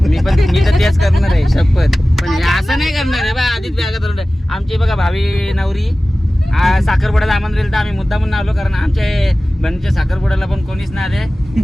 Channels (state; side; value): normal; both; correlation 0.97